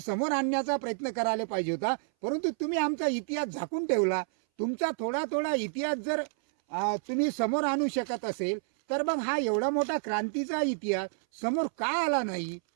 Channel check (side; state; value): left; silent; 58 dB below the other